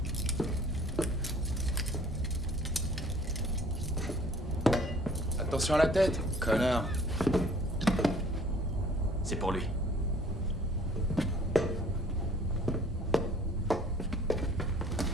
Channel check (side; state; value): both; normal; correlation 0.54